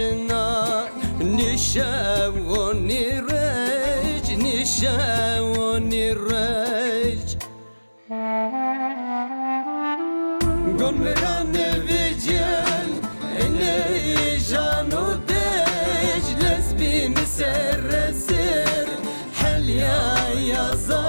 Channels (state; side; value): inverted; both; correlation -1.00